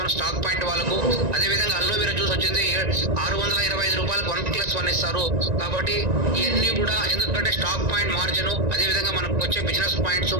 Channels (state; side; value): late; left; 1.9 ms